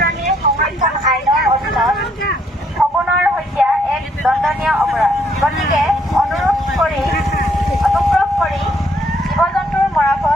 সংৰক্ষণ আইনৰ অধীনত শগুনৰ হত্যা এক দণ্ডনীয় অপৰাধ। গতিকে অনুগ্ৰহ কৰি জীৱ-জন্তুৰ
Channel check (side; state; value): both; normal; correlation 0.69